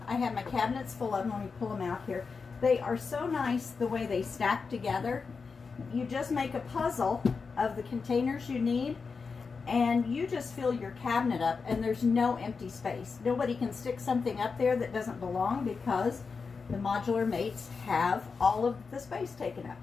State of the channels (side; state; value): right; quieter; 5.0 dB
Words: I have my cabinets full of them. Let me pull them out here. They are so nice the way they stack together. You just make a puzzle of the containers you need, and you just fill your cabinet up, and there's no empty space. Nobody can stick something up there that doesn't belong because the Modular Mates have all of the space taken up.